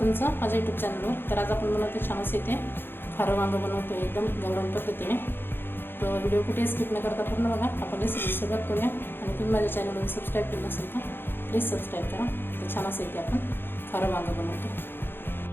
माझ्या यूट्यूब चॅनलवर. तर आज आपण बनवतो छान असं इथे खारं वांगं बनवतो एकदम गावरान पद्धतीने. तर व्हिडिओ कुठे स्किप न करता पूर्ण बघा. आपण रेसिपी सुरुवात करूया. आणि तुम्ही माझ्या चॅनलवर सबस्क्राईब केलं नसेल तर प्लीज सबस्क्राईब करा. तर छान असं इथे आपण खारं वांगं बनवतो.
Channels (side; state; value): right; late; 0.10 ms